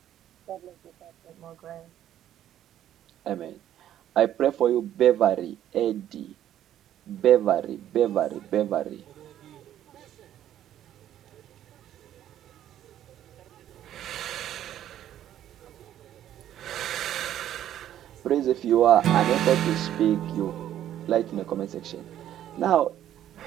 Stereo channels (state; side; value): quieter; left; 11.5 dB